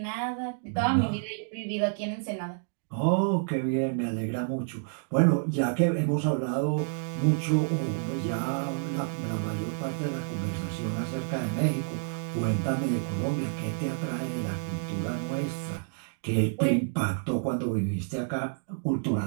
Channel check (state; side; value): silent; left; digital silence